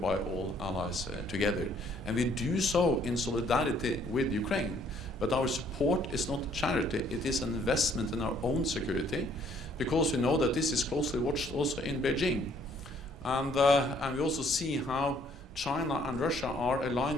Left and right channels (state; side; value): normal; both; correlation 0.63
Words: all allies together. And we do so in solidarity with Ukraine. But our support is not charity, it is an investment in our own security, because we know that this is closely watched also in Beijing. And we also see how China and Russia are